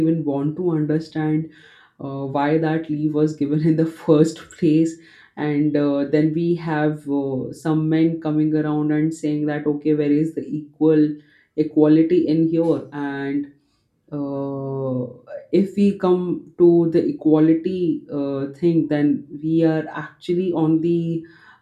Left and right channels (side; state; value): both; identical; correlation 1.00